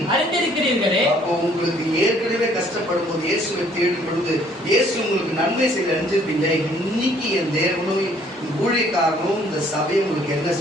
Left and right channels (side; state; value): both; normal; correlation 0.61